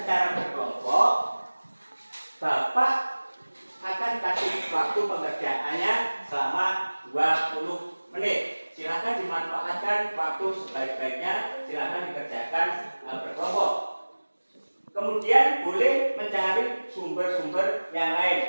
berkelompok. Bapak akan kasih waktu pengerjaannya selama 20 menit. Silahkan dimanfaatkan waktu sebaik-baiknya. Silahkan dikerjakan berkelompok. Kemudian boleh mencari sumber-sumber yang lain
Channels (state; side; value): inverted; both; correlation -1.00